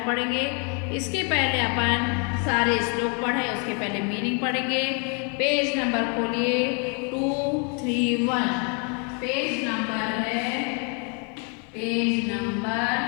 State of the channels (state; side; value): quieter; right; 37.6 dB